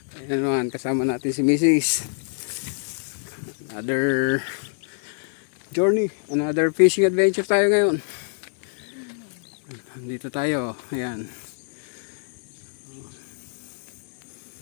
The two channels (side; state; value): right; silent; 62 dB below the other